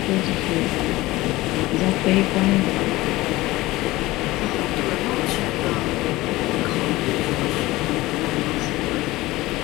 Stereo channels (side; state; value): right; quieter; 18.9 dB